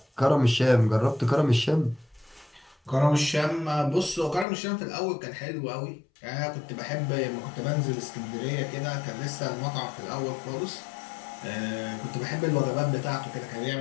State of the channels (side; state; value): right; drops out; at 4.5 s